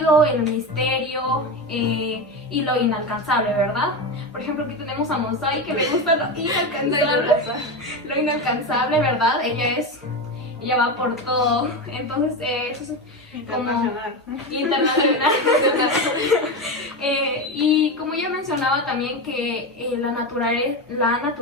el misterio y lo inalcanzable, ¿verdad? Por ejemplo, aquí tenemos a Monsai, que le gusta lo inalcanzable, ¿verdad? Ella va por todo, entonces eso es internacional. Internacional. Y como ya mencionaba también que la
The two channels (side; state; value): both; normal; correlation 0.18